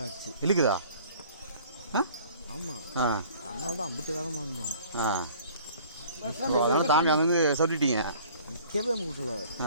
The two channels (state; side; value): inverted; both; correlation -0.51